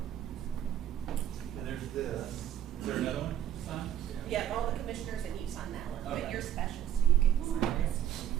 And there's this. Is there another one to sign? Yeah, all the commissioners and you sign that one, but Okay. you're special, so you can sign this.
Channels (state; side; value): quieter; left; 10.9 dB